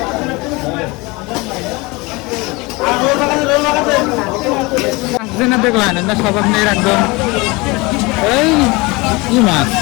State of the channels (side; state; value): right; quieter; 24.6 dB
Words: দেখলেন না সব আপনি একদম এই কি মাছ,